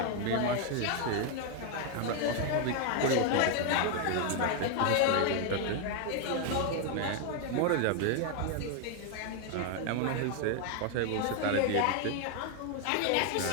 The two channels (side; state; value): both; different; correlation 0.01